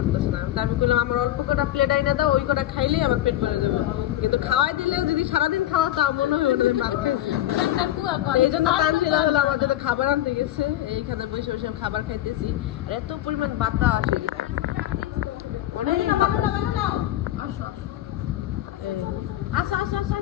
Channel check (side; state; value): right; quieter; 13.6 dB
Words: না। আমি বললাম আমার অল্প কটা প্লেট আইনা দাও, ওই কটা খাইলেই আমার পেট ভরে যাবে, কিন্তু খাওয়াই দিলে যদি সারাদিন খাওয়া তাও মনে হয় ওটা ভাত খাইছে। এই জন্য তানজিলা হলো আমার জন্য খাবার আনতে গেছে, এইখানে বসে বসে খাবার খাইতেছি। আর এত পরিমাণ বাতাস আসে কিনা,